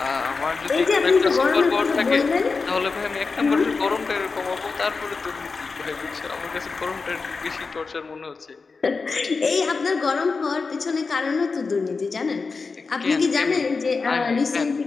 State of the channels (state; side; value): quieter; right; 4.4 dB